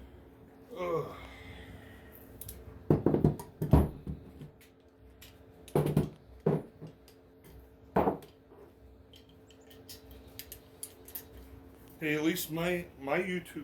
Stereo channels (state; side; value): identical; both; correlation 1.00